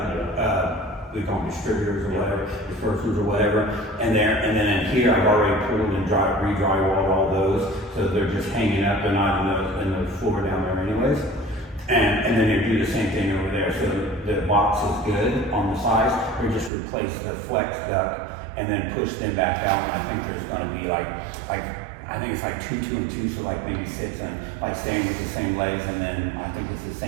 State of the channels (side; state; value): left; drops out; at 16.7 s